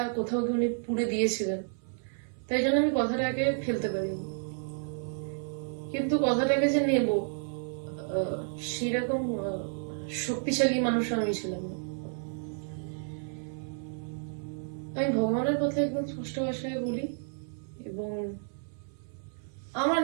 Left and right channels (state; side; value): silent; left; 57 dB below the other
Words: কোথাও কি উনি পুড়ে দিয়েছিলেন, তাই জন্য আমি কথাটাকে ফেলতে পারিনি। কিন্তু কথাটাকে যে নেব সেরকম শক্তিশালী মানুষ আমি ছিলাম না। আমি ভগবানের কথা একদম স্পষ্ট ভাষায় বলি, এবং আমার